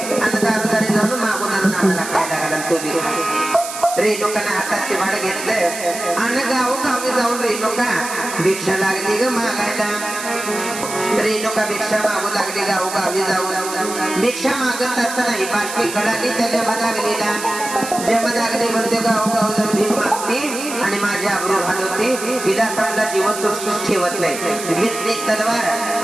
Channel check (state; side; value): noise; right; hiss, 8 dB below the sound